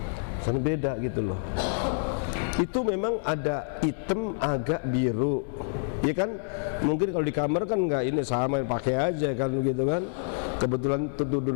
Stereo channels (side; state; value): right; silent; digital silence